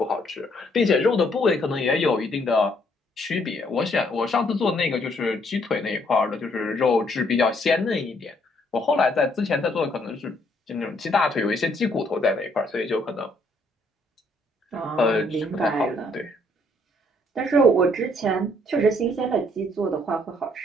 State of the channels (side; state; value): both; normal; correlation 0.68